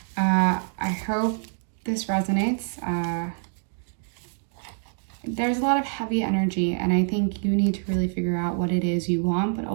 I hope this resonates. There's a lot of heavy energy, and I think you need to really figure out what it is you want, but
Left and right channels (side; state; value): left; silent; 61 dB below the other